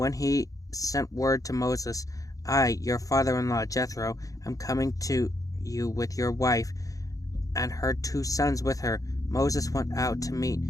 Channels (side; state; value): right; late; 0.17 ms